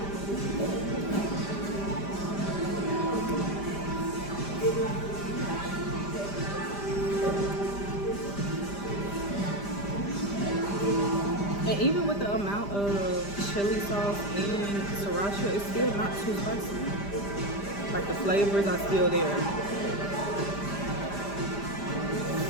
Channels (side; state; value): right; late; 5.0 ms